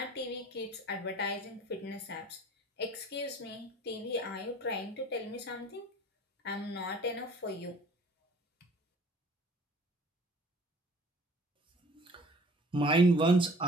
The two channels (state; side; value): normal; both; correlation 0.50